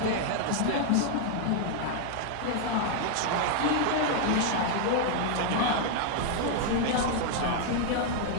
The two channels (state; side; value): different; both; correlation 0.00